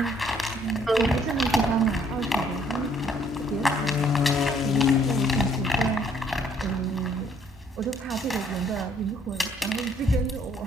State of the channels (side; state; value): both; normal; correlation 0.64